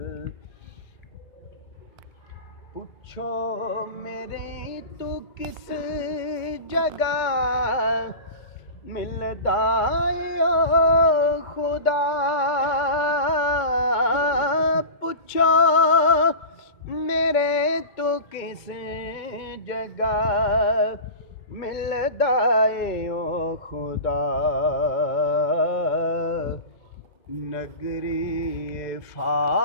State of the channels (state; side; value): late; right; 2.2 ms